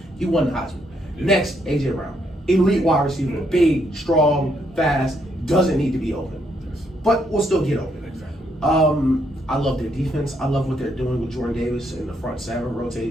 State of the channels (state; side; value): normal; both; correlation 0.74